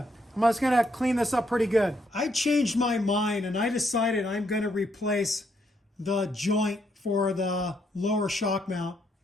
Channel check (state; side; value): normal; both; correlation 0.75